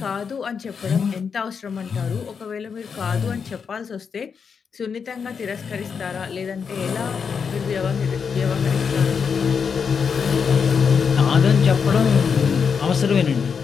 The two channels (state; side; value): quieter; right; 6.2 dB